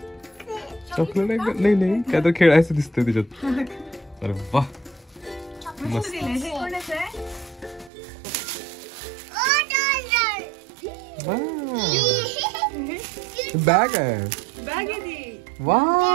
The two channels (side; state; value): left; drops out; at 7.9 s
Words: चॉकलेट नाही नाही काय तर खेळायचं दिसतंय त्याच्यात अरे वा मस्त बॅग आहे वा